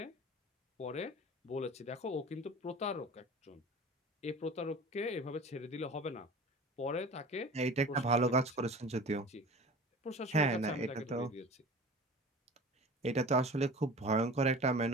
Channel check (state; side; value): normal; both; correlation 0.38